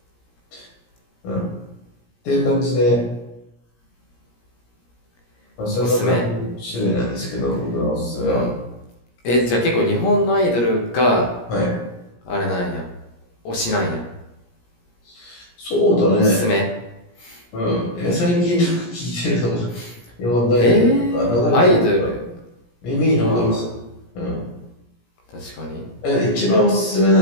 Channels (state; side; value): late; right; 17 ms